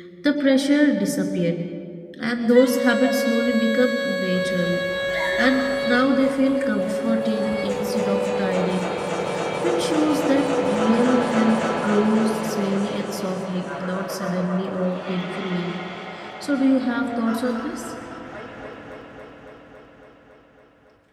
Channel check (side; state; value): both; identical; correlation 1.00